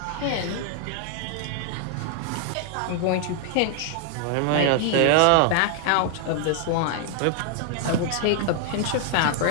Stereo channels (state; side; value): different; both; correlation 0.00